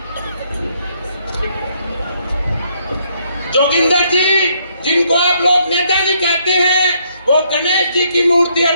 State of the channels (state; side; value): inverted; both; correlation -0.70